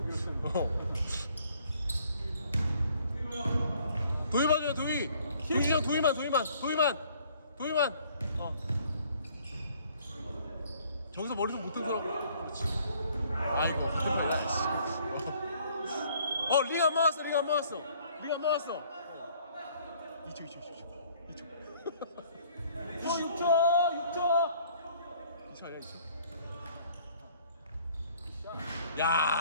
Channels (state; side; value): inverted; both; correlation -0.59